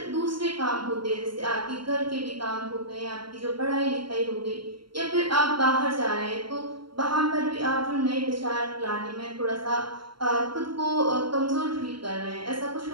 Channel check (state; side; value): late; left; 0.73 ms